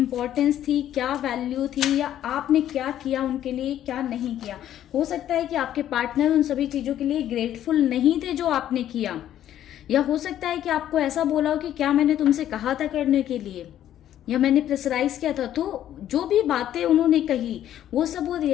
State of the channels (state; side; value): quieter; right; 11.5 dB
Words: थी, क्या वैल्यू थी, या आपने क्या किया उनके लिए, क्या नहीं किया। हो सकता है कि आपके पार्टनर उन सभी चीज़ों के लिए ग्रेटफुल नहीं थे जो आपने किया, या हो सकता है कि आपको ऐसा बोला हो कि क्या मैंने तुमसे कहा था करने के लिए, या मैंने प्रेशराइज किया था। तो जो भी बातें उन्होंने कही वो सब वो